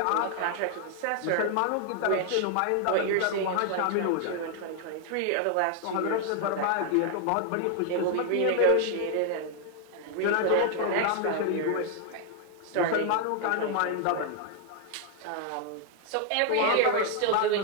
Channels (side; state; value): both; different; correlation 0.00